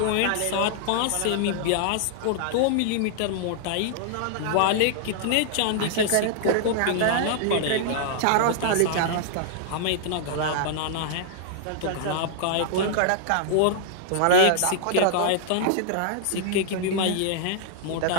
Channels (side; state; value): both; different; correlation -0.01